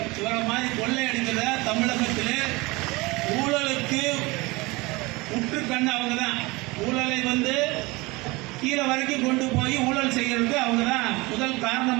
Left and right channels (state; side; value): quieter; left; 23.6 dB